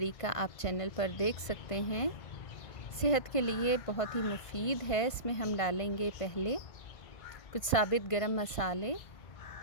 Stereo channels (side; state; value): right; late; 1.5 ms